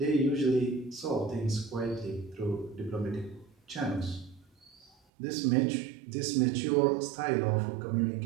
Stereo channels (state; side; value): drops out; left; at 5.0 s